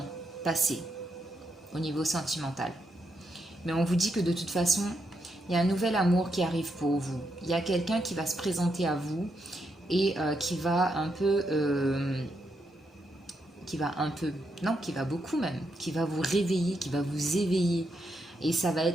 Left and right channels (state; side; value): normal; both; correlation 0.81